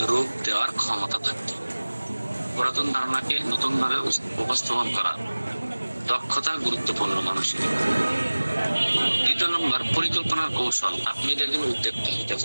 রূপ দেওয়ার ক্ষমতা থাকতে হবে। পুরাতন ধারণাকে নতুন ভাবে উপস্থাপন করা দক্ষতা গুরুত্বপূর্ণ মানুষের। দ্বিতীয় নম্বর, পরিকল্পনার কৌশল। আপনি যদি একজন উদ্যোক্তা হতে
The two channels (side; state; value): both; inverted; correlation -1.00